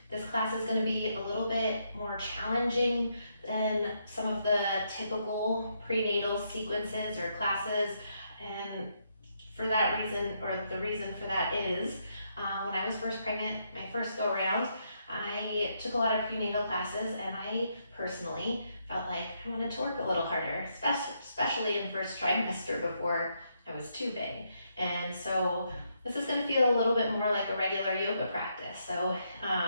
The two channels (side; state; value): both; inverted; correlation -0.77